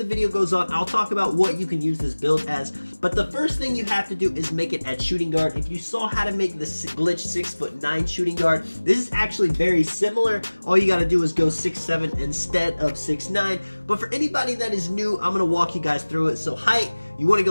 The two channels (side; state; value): both; inverted; correlation -1.00